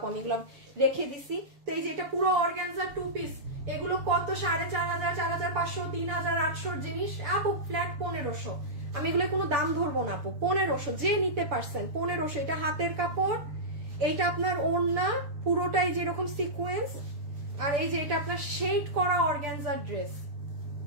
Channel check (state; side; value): late; left; 6.9 ms